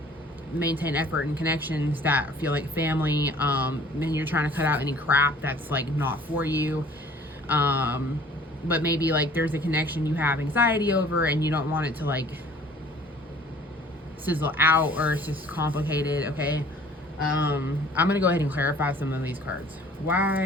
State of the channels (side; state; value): both; normal; correlation 0.52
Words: maintain effort and connections that feel like family, and you're trying to cut out any crap that's like not for you. But maybe like there's a connection you have anxiety over and you don't want it to like sizzle out, or it's just complicated, okay? I'm gonna go ahead and clarify some of these cards.